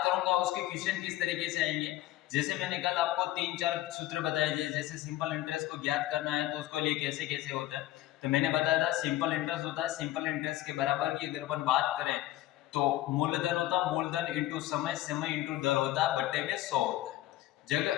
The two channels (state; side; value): quieter; right; 15.1 dB